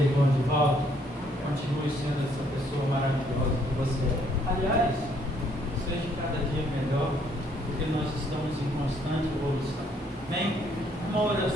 Divaldo. Continue sendo essa pessoa maravilhosa que você é. Aliás, seja cada dia melhor, porque nós estamos em constante evolução. Amém? Uma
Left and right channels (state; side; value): normal; both; correlation 0.67